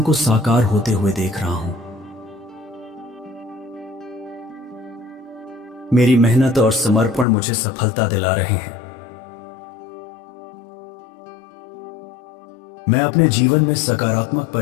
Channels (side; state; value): right; drops out; at 7.2 s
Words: को साकार होते हुए देख रहा हूं। मेरी मेहनत और समर्पण मुझे सफलता दिला रहे हैं। मैं अपने जीवन में सकारात्मक